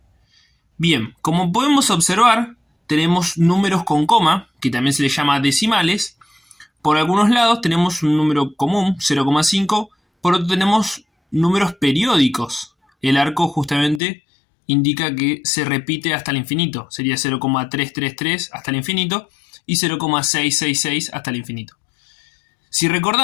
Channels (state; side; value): drops out; right; at 14.0 s